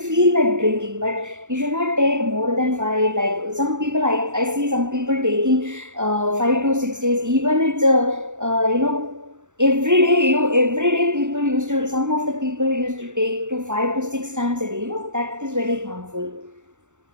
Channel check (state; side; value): late; left; 0.85 ms